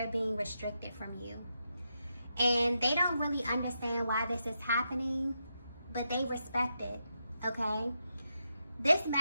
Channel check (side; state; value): both; inverted; correlation -0.84